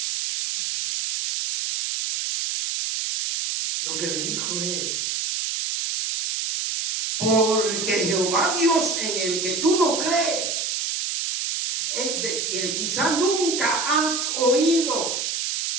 Lo que le dijo es, porque Jehová Dios en el que tú no crees, es de que quizá nunca has oído,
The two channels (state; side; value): noise; right; hiss, 1 dB below the sound